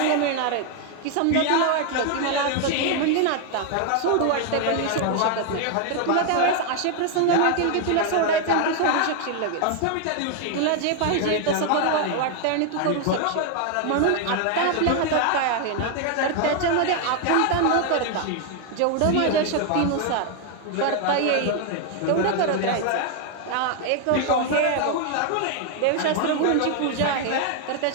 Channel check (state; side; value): different; both; correlation 0.00